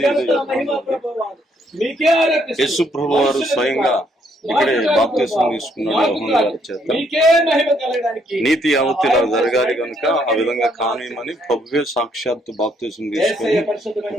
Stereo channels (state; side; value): normal; both; correlation 0.70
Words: యేసు ప్రభు వారు స్వయంగా ఇక్కడే బాప్తిసం తీసుకున్నాడు యోహాను గారి చేత. నీతి యావత్తు ఇలా జరగాలి కనుక ఆ విధంగా కానియమని ప్రభువే సాక్షాత్తు బాప్తిసం తీసుకుని